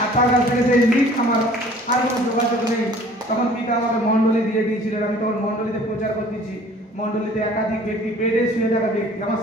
আর তার কাছ থেকে সেই লিঙ্ক আমার আর কোনো যোগাযোগ নেই। তখন পিতা আমাকে মণ্ডলী দিয়ে দিয়েছিলেন, আমি তখন মণ্ডলীতে প্রচার করতেছি। মণ্ডলীতে একাধিক ব্যক্তি, বেডে শুয়ে থাকা ব্যক্তি আমার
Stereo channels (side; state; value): both; normal; correlation 0.51